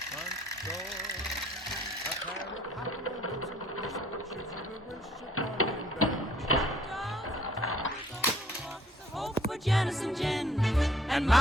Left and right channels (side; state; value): both; normal; correlation 0.60